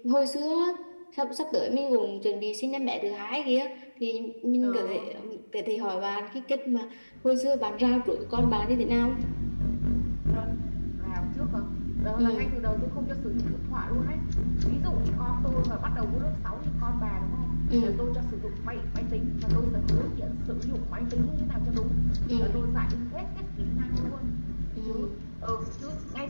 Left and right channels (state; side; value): inverted; both; correlation -1.00